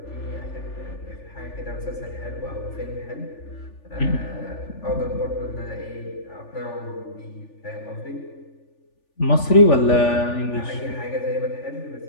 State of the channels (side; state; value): right; late; 3.4 ms